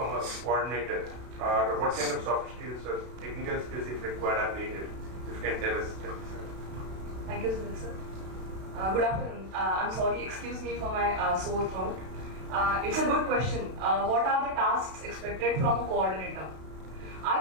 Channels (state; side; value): late; left; 32 ms